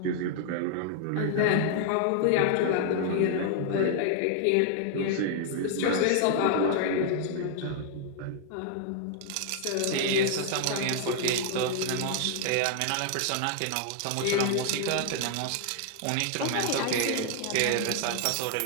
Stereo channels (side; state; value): both; different; correlation 0.00